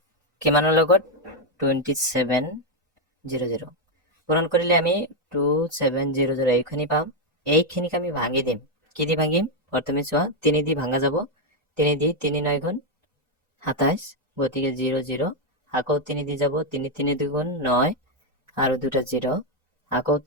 কিমানৰ লগত 2700 পূৰণ কৰিলে আমি 2700 এইখিনি পাম এইখিনিক আমি ভাঙি দিম কি দি ভাঙিম প্ৰথমে চোৱা 3 দি ভাঙা যাব 3 দি 3 9 গুণ 27 গতিকে 0 0 আকৌ 3 দি যাব 3 3 2 গুণ 9 আৰু দুটা 0 আকৌ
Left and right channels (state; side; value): normal; both; correlation 0.03